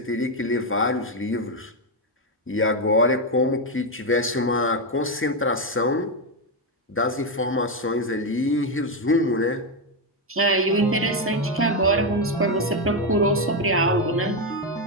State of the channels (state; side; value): normal; both; correlation 0.06